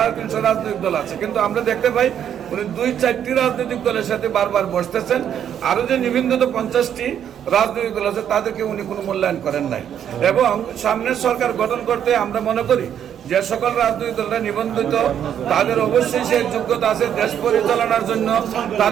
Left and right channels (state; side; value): quieter; left; 9.3 dB